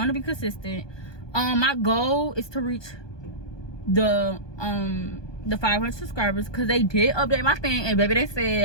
be consistent. My goal is to reach the 500 subscribers, because they did update my thing, and baby, they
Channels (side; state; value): right; late; 1.2 ms